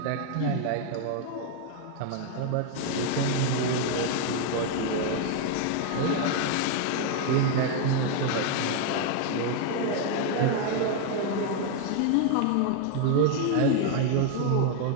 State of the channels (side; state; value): both; different; correlation 0.01